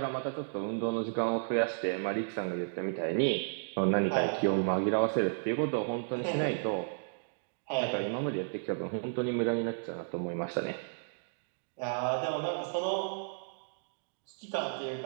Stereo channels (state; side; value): silent; left; digital silence